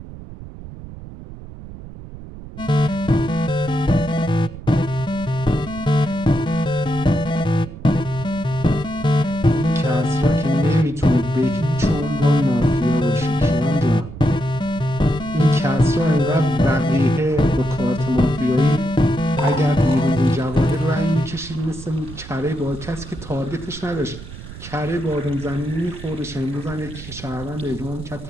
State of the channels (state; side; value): noise; right; rumble, 13 dB below the sound